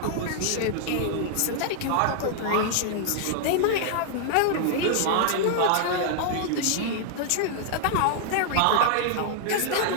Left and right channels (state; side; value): different; both; correlation -0.01